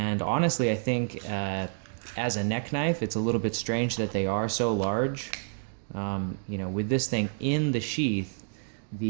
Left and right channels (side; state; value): left; silent; digital silence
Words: honestly, I think as a neck knife, it's a little bit strange that they are so large. With this thing in the sheath,